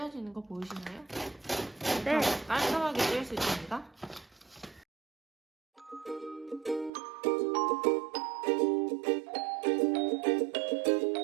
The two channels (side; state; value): left; drops out; at 6.9 s